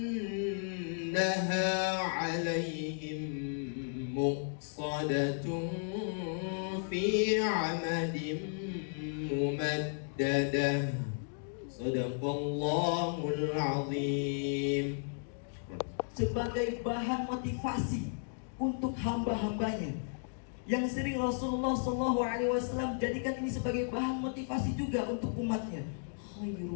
إنها عليهم مؤصدة في عمد ممددة. صدق الله العظيم. Sebagai bahan motivasi untuk hamba-hambanya yang sering Rasulullah SAW jadikan ini sebagai bahan motivasi juga untuk umatnya.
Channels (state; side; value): silent; right; digital silence